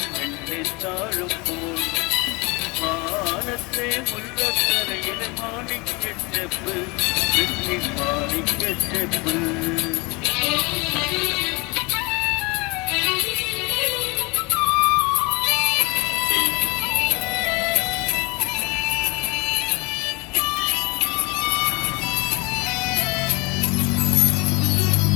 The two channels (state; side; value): quieter; right; 26.7 dB